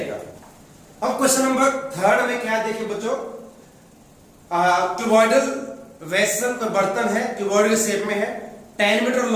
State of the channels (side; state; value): both; identical; correlation 1.00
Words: अब क्वेश्चन नंबर 3 में क्या देखिए बच्चों, क्यूबॉइडल वेसल का बर्तन है, क्यूबॉइडल शेप में है, 10 metre